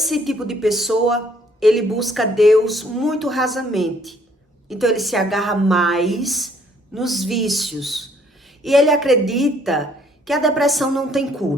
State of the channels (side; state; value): both; normal; correlation 0.63